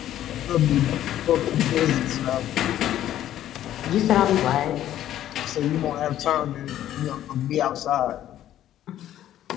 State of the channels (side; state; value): right; quieter; 12.2 dB